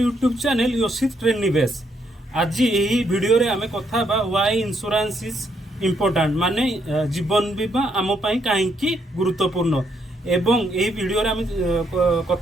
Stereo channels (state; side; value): normal; both; correlation 0.74